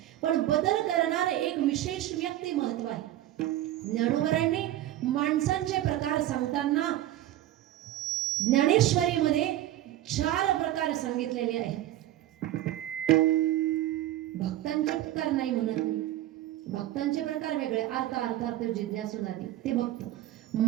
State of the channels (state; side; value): quieter; left; 13.9 dB